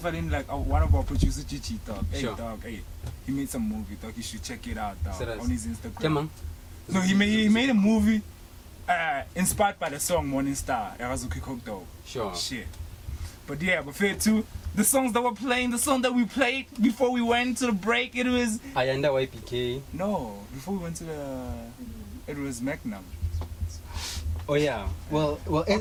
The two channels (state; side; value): identical; both; correlation 1.00